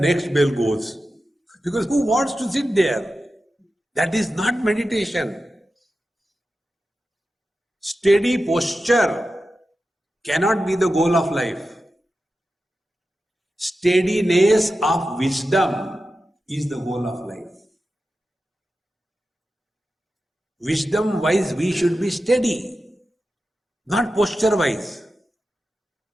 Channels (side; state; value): both; normal; correlation 0.92